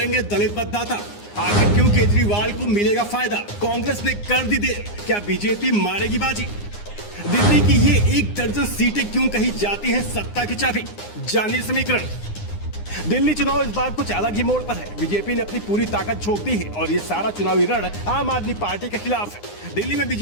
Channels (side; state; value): right; late; 9.7 ms